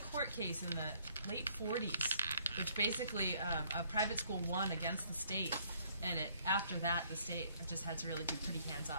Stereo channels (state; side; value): inverted; both; correlation -0.63